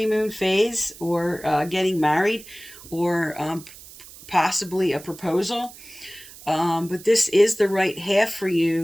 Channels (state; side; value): noise; right; hiss, 18 dB below the sound